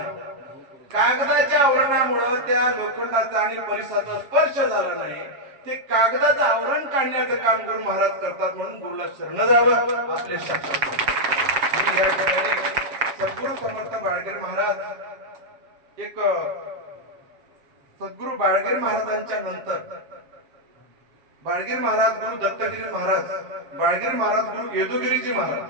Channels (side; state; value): left; late; 7.4 ms